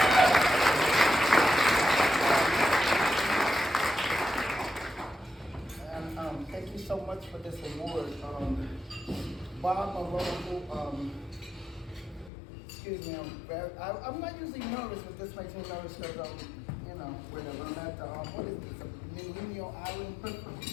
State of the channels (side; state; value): right; drops out; at 12.3 s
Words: And thank you so much for this award. Bob Mulino, excuse me, I'm not usually nervous, but this makes me nervous because you know, whatever. I'm at the, what is this, Mulino Island?